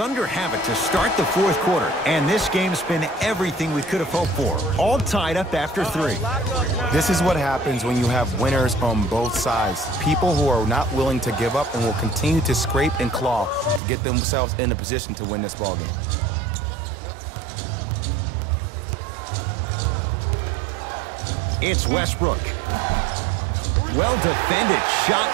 have it to start the 4th quarter, and this game's been everything we could have hoped for. All tied up after 3. This is what happens when you have winners on both sides. People who are not willing to give up and will continue to scrape and claw to get themselves in a position to win this ballgame. It's Westbrook. Well defended, shot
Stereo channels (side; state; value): left; drops out; at 13.8 s